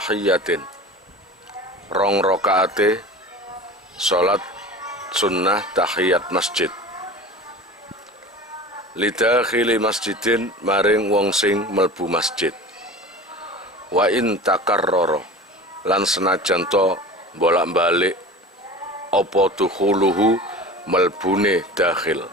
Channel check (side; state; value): both; normal; correlation 0.36